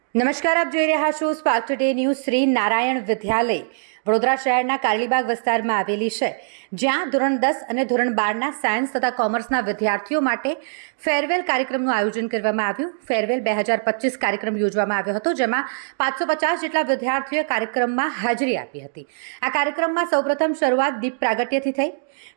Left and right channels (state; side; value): silent; left; digital silence